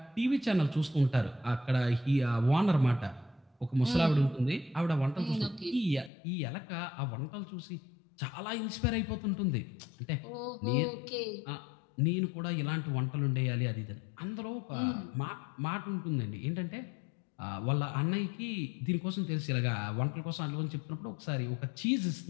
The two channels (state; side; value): drops out; right; at 6.1 s